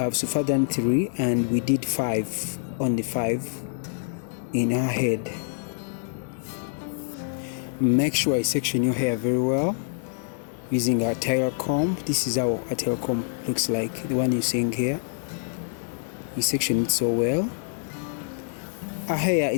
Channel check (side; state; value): right; silent; 61 dB below the other